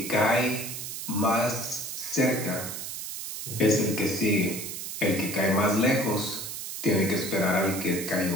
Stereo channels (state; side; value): noise; right; hiss, 7 dB below the sound